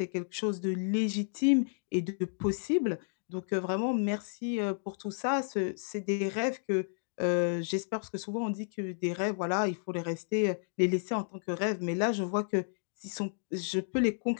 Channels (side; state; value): right; silent; digital silence